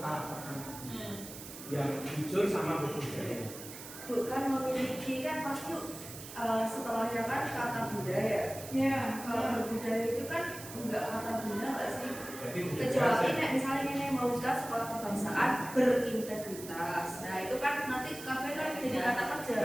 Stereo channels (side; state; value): right; noise; hiss, 13 dB below the sound